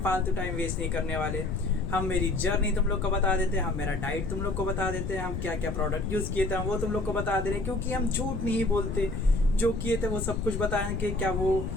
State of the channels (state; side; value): noise; left; rumble, 3 dB below the sound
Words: फालतू टाइम वेस्ट नहीं करने वाले। हम मेरी जर्नी तुम लोग को बता देते हैं, हम मेरा डाइट तुम लोग को बता देते हैं, हम क्या क्या प्रोडक्ट यूज़ किए थे वो तुम लोग को बता दे रहे हैं, क्योंकि हम झूठ नहीं बोलते। जो किए थे वो सब कुछ बताएं कि क्या वो